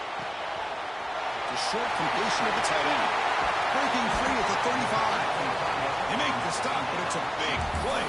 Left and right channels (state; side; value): identical; both; correlation 1.00